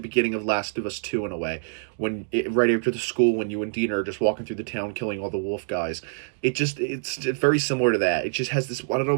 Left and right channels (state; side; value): silent; left; digital silence